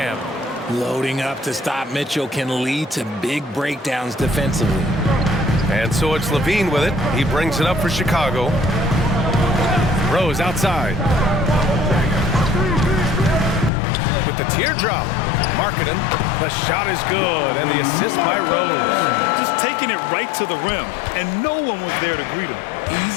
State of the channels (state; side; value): drops out; right; at 13.7 s